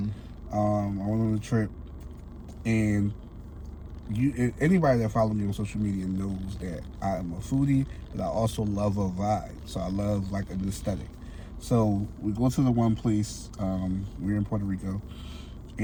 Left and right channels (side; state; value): both; identical; correlation 1.00